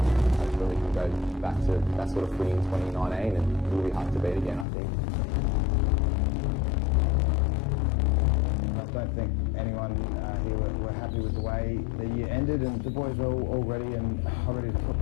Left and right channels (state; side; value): drops out; right; at 4.7 s